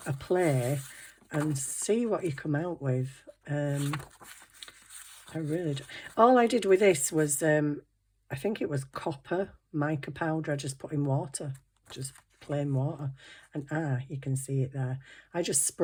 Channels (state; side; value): identical; both; correlation 1.00